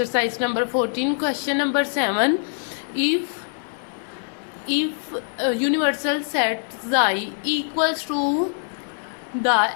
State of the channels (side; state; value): right; silent; 63 dB below the other